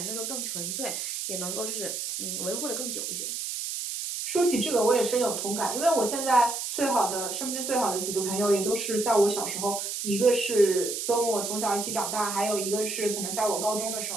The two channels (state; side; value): noise; right; hiss, 4 dB below the sound